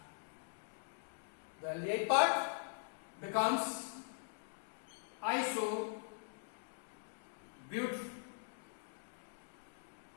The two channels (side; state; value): right; silent; digital silence